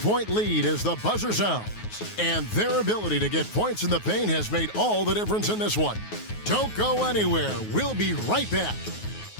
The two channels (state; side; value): late; right; 9.4 ms